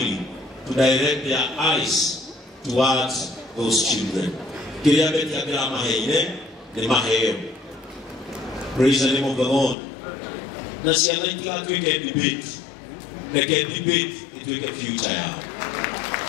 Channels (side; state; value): right; drops out; at 9.8 s